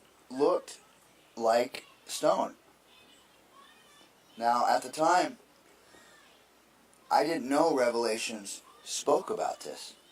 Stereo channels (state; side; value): identical; both; correlation 1.00